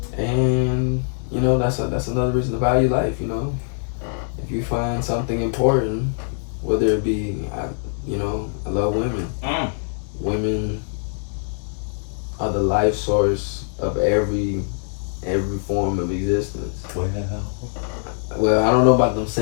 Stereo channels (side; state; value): right; silent; digital silence